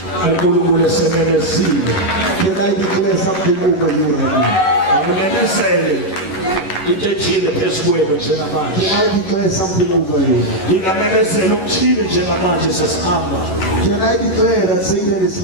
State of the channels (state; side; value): late; right; 11 ms